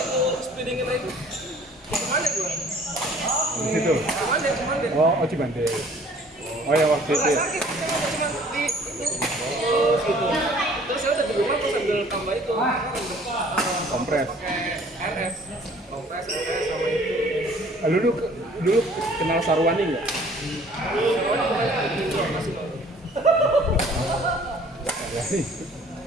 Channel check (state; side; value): normal; both; correlation 0.54